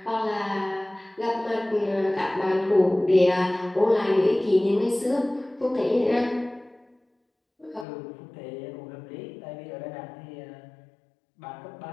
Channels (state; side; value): drops out; right; at 7.9 s